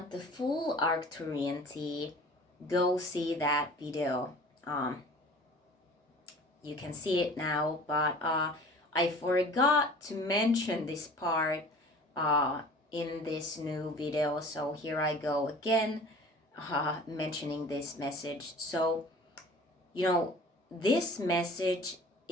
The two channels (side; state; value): both; normal; correlation 0.44